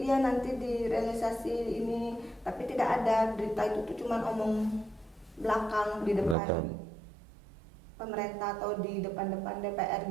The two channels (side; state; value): left; drops out; at 6.4 s